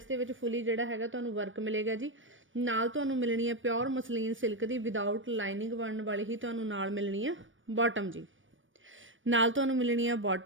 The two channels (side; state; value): left; late; 0.56 ms